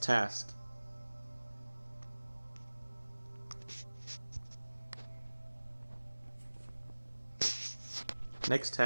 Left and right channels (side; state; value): both; inverted; correlation -1.00